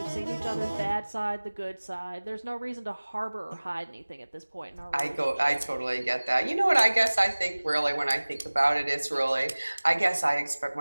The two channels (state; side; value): inverted; both; correlation -1.00